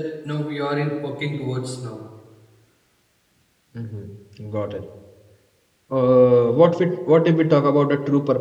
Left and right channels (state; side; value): identical; both; correlation 1.00